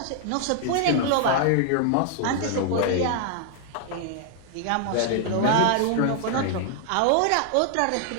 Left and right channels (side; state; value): both; different; correlation 0.00